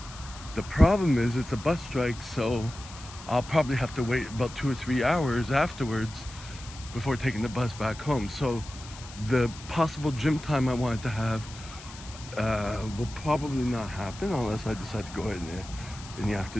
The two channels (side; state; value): left; noise; hiss, 16 dB below the sound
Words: The problem is it's a bus strike, so I'll probably have to wait about 2 or 3 hours afterwards before taking the bus back home. So the possible gym time I wanted to have will probably not happen unless I decide to go in the